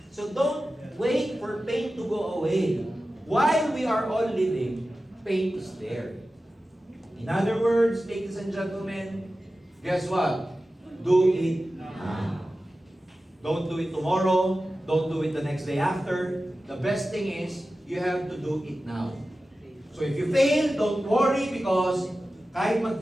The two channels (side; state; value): both; normal; correlation 0.94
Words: So don't wait for pain to go away. While we are all living, pain is there. In other words, ladies and gentlemen, guess what? Do it now. Don't do it tomorrow. Don't do it the next day after. The best thing is, you have to do it now. So if you fail, don't worry because kahit